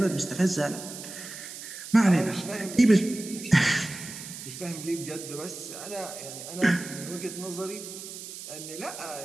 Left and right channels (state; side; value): noise; right; hiss, 11 dB below the sound